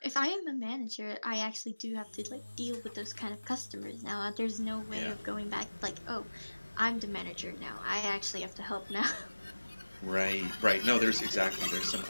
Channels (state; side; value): inverted; both; correlation -1.00